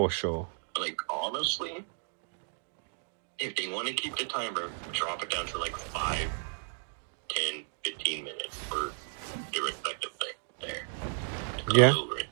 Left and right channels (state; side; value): silent; left; 56 dB below the other